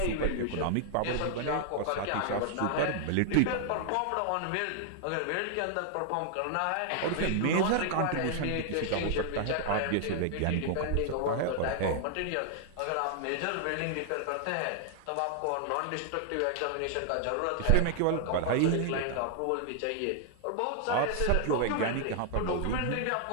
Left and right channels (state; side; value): different; both; correlation 0.00